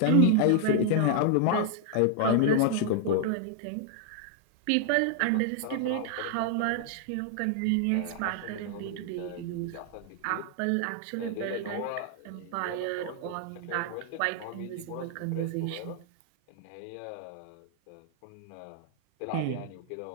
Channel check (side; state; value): both; different; correlation -0.01